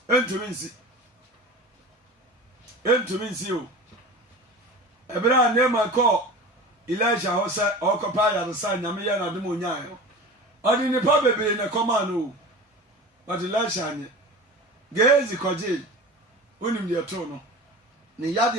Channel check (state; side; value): normal; both; correlation 0.34